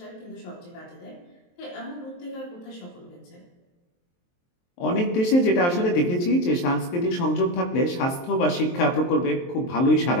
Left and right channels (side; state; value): right; late; 23 ms